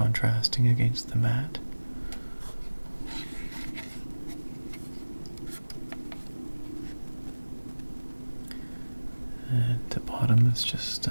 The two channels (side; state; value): both; inverted; correlation -1.00